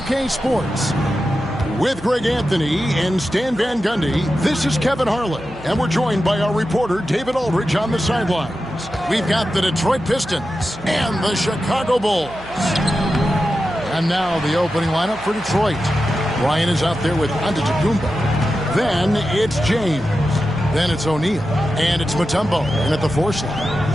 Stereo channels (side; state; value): right; noise; hum, 19 dB below the sound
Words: Sports. With Greg Anthony and Stan Van Gundy, this is Kevin Harlan, and we're joined by our reporter, David Aldridge, on the sidelines. We've got the Detroit Pistons and the Chicago Bulls. And now the opening lineup for Detroit. Ryan is out there with Antetokounmpo. Then it's James. Then it's O'Neal. And it's Mutombo in at the 4 slot.